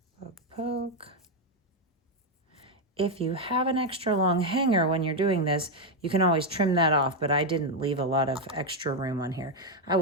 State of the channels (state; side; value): normal; both; correlation 0.04